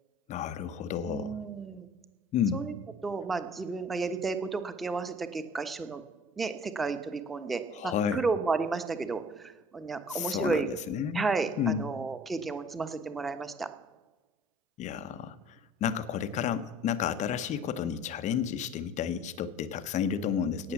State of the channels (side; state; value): both; normal; correlation 0.49